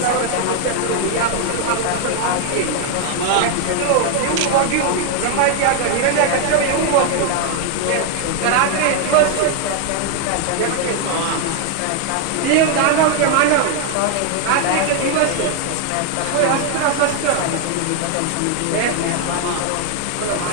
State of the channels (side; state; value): both; different; correlation 0.00